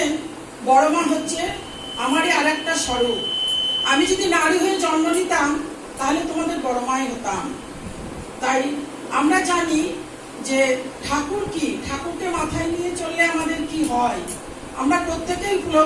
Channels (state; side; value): identical; both; correlation 1.00